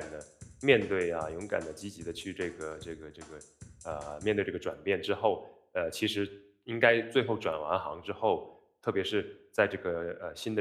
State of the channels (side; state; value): both; identical; correlation 1.00